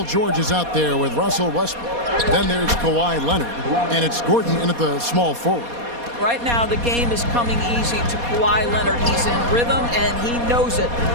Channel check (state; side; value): late; left; 4.2 ms